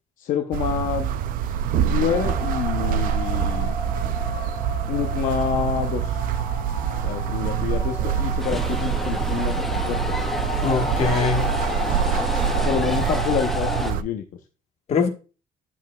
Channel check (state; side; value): normal; both; correlation 0.25